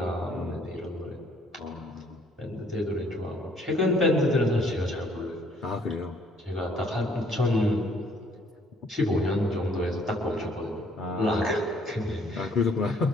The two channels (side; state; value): both; normal; correlation 0.62